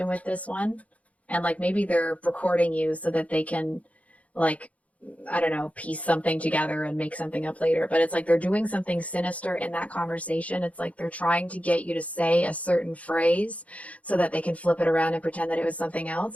with this one, and like maybe they're recording you so that they can, like, I don't know, piece something together and make something up later. But it's like they're doing something sinister in that conversation. It's like they're trying to get you to say a certain phrase so that they can flip it around and pretend that it was something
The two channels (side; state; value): right; late; 0.067 ms